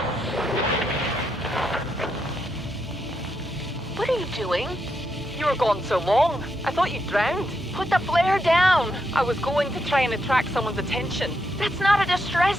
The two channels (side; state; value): both; normal; correlation 0.82